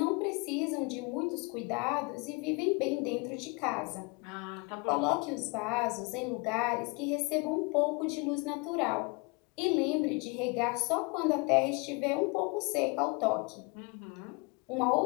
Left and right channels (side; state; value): right; quieter; 29.4 dB